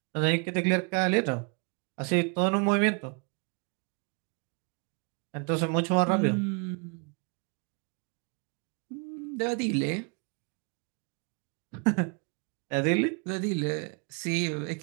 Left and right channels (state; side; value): quieter; left; 35.0 dB